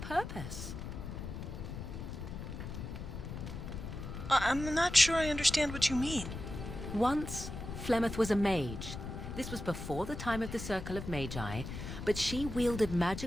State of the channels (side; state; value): left; noise; rumble, 7 dB below the sound